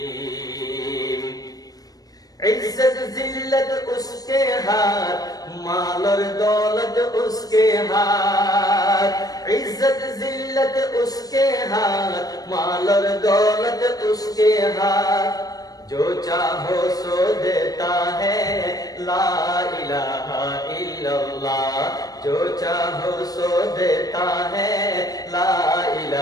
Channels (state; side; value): late; right; 0.18 ms